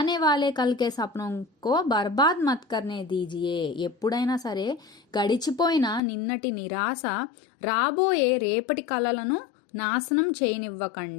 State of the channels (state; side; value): drops out; right; at 6.0 s